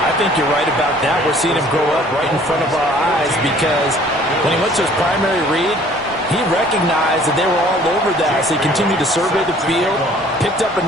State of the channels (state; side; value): normal; both; correlation 0.55